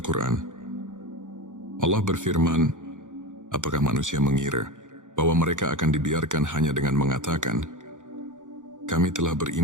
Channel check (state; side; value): late; left; 0.87 ms